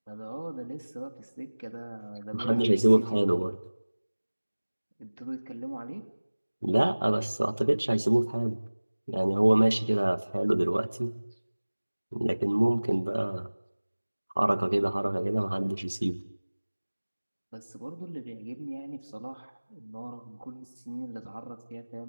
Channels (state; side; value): inverted; both; correlation -1.00